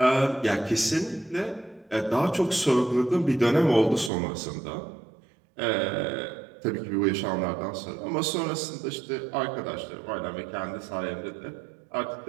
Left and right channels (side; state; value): left; drops out; at 4.1 s